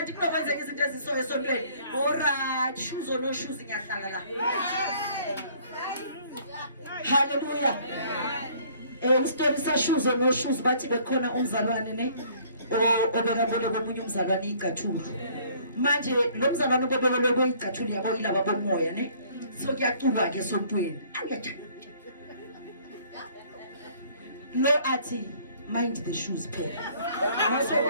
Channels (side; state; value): both; inverted; correlation -0.58